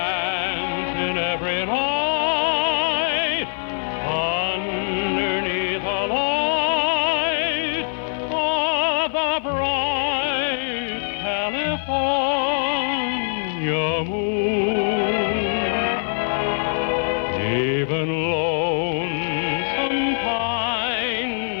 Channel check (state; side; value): silent; right; digital silence